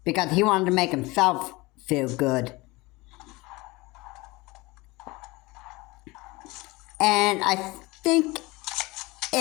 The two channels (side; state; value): right; quieter; 22.7 dB